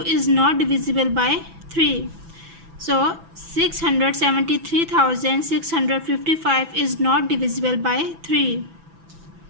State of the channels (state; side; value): late; left; 6.0 ms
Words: not divisible by 3. So 673,655 is not divisible by 3.